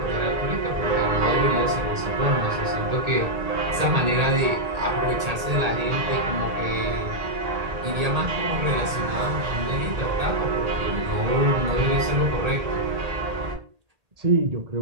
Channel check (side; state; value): left; late; 1.8 ms